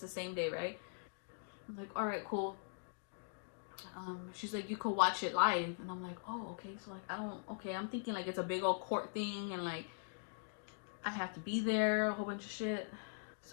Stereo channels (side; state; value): right; silent; digital silence